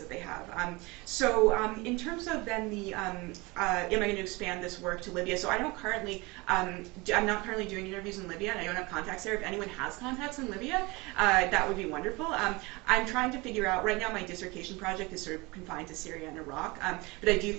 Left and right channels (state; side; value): quieter; left; 24.7 dB